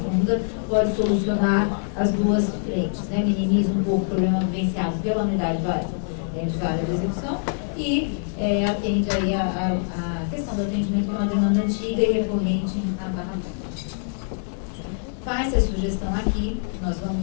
Funda pode solucionar as duas frentes, né? Minimiza um pouco o problema vivenciado pela unidade de vara de execução e atende aí a questão do atendimento, que é uma demanda antiga e recorrente na Barra Funda. Faz a sugestão aqui, nós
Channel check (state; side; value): silent; right; digital silence